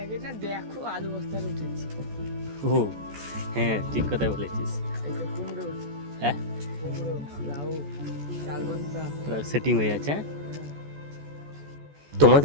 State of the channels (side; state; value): left; late; 14 ms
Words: গেট না, দেখো আলু বস্তার উঠেছে। ও হ্যাঁ, ঠিক কথা বলেছিস। কুমড়ো, হ্যাঁ কুমড়ো, লাউ, চালবন্তা সেটিং হয়ে যাচ্ছে।